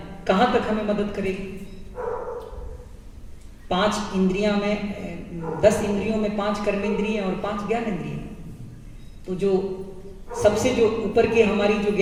कहां तक हमें मदद करेगी? 5 इंद्रियां में, 10 इंद्रियों में 5 कर्मेंद्रियां और 5 ज्ञान इंद्रियां। तो जो सबसे जो ऊपर की हमारी जो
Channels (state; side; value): identical; both; correlation 1.00